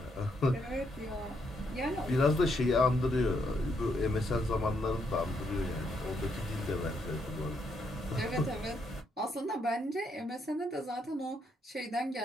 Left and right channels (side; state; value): both; normal; correlation 0.76